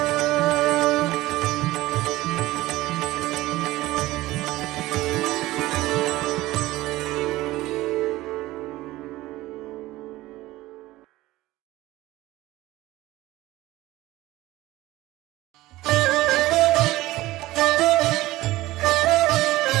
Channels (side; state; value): left; quieter; 17.6 dB